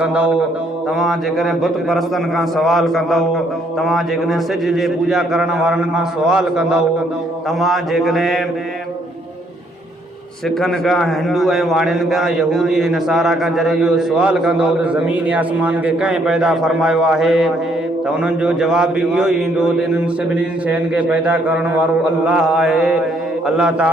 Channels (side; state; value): both; normal; correlation 0.68